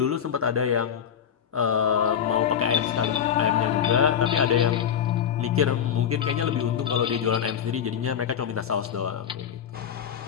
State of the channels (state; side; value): quieter; right; 8.6 dB